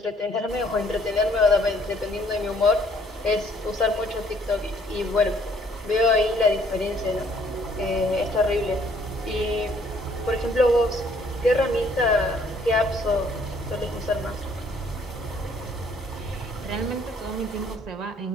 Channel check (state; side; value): normal; both; correlation 0.62